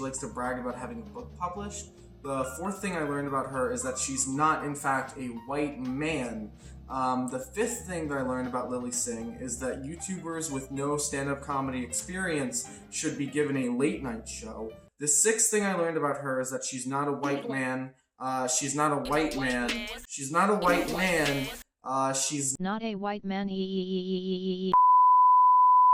likes to brag about having a book published. The fourth thing I learned about her is that she's not, in fact, a white man. The fifth thing that I learned about Lily Singh is that YouTubers with no stand-up comedy experience should be given a late-night show. The sixth thing I learned about her is that she's not a white man. She's not a white man. She's not a white man. She's not a white man.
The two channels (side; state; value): both; identical; correlation 1.00